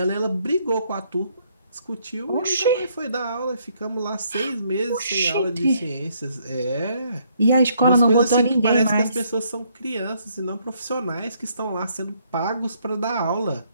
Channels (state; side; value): inverted; both; correlation -0.69